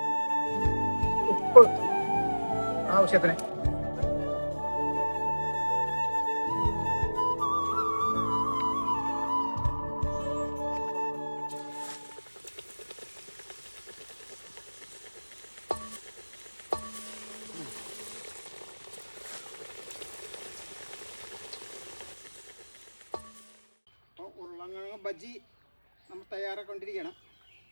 ഉപ്പ് ആവശ്യത്തിന്, ഉരുളക്കിഴങ്ങ് ബജ്ജി നമ്മൾ തയ്യാറാക്കൊണ്ടിരിക്കണം.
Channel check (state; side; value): inverted; both; correlation -1.00